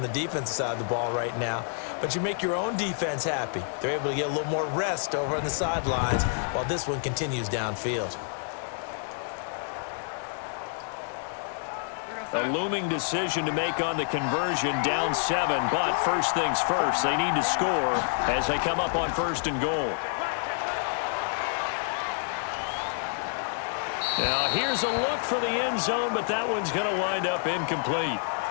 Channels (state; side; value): silent; right; 59 dB below the other